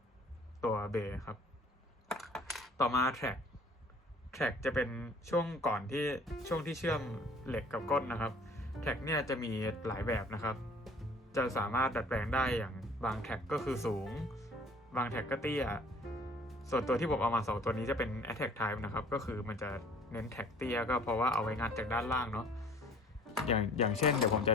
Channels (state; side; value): normal; both; correlation 0.53